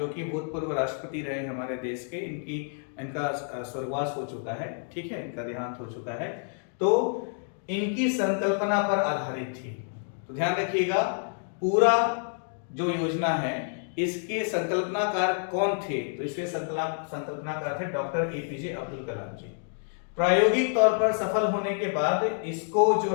कि भूतपूर्व राष्ट्रपति रहे हमारे देश के, इनका स्वर्गवास हो चुका है, ठीक है, इनका देहांत हो चुका है, तो इनकी संकल्पना पर आधारित थी। तो ध्यान रखिएगा, पूरा जो योजना है इसके संकल्पनाकार कौन थे, तो इसके संकल्पनाकार थे डॉक्टर APJ अब्दुल कलाम जी। प्रायोगिक तौर पर सफल होने के बाद इसको जो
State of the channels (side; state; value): right; silent; 59 dB below the other